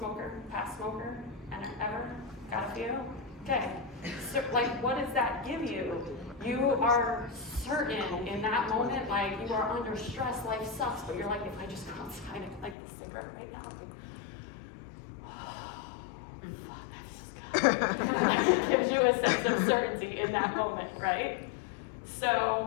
Past smoker? And ever? Got a few? Okay. So, like, what does that give you? You are certain in that moment, like you are under stress, life sucks, but you're like, if I just go outside and light this cigarette right now, it gives you a sense of certainty in that moment, right?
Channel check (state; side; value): drops out; right; at 12.8 s